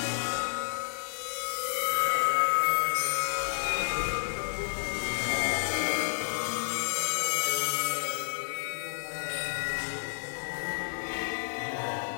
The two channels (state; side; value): silent; right; digital silence